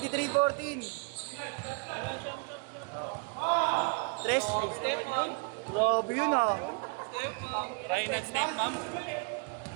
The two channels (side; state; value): left; quieter; 34.4 dB